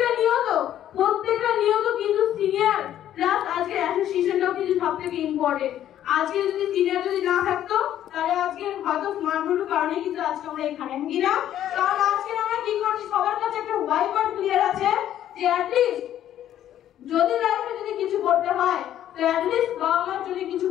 প্রত্যেকটা নিয়ত কিন্তু সিনিয়র প্লাস আজকে অ্যাসোসিয়েশনটাও কিন্তু সব থেকে ইম্পর্টেন্ট। আজকে যদি সিনিয়র যদি না থাকতো তাহলে আজকে হয়তো স্মার্টফোনের কারণে কিন্তু আজকে আমরা এখানে, হ্যাঁ কি না? কারণ আজকে আমরা কি করছি, সবার কাছে একটা হোয়াইট বোর্ড ক্লিয়ার আছে যে অ্যাটলিস্ট যদি লাইফে যদি কিছু করতে হয় তো অ্যাটলিস্ট বাবা মার জন্য কিছু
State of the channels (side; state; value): right; quieter; 11.4 dB